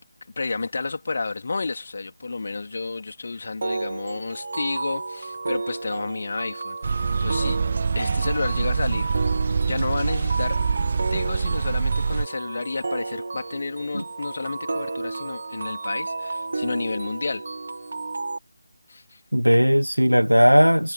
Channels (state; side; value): inverted; both; correlation -0.95